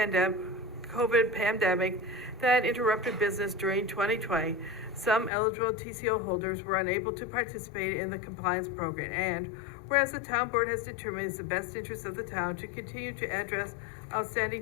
pandemic that interrupted business during 2020, some eligible TCO holders were unable to participate in the compliance program. And whereas the town board has determined it's the best interest of the town to continue to address outstanding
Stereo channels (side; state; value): right; drops out; at 5.3 s